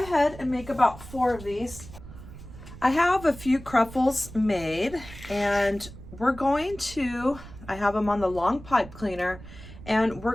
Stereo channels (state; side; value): noise; right; rumble, 16 dB below the sound